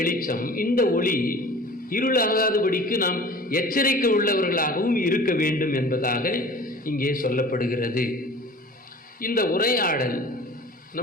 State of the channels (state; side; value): normal; both; correlation 0.43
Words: இந்த ஒளி இருளாகாதபடிக்கு நாம் எச்சரிக்கை உள்ளவர்களாகவும் இருக்க வேண்டும் என்பதாக இங்கே சொல்லப்படுகிறது. இந்த உரையாடல்